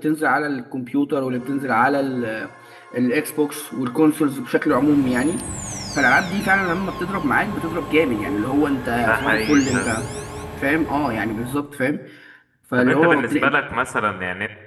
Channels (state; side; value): identical; both; correlation 1.00